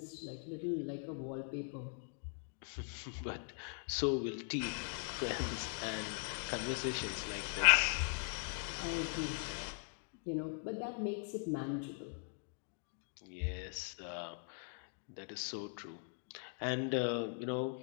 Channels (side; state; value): right; silent; 51 dB below the other